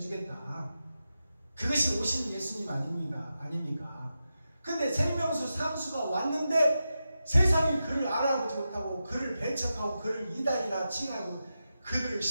그것이 오신 예수님 아닙니까? 근데 생명수 상수가 왔는데 세상이 그를 알아보지 못하고 그를 배척하고 그를 이단이라 칭하고 그들을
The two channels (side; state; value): both; inverted; correlation -0.90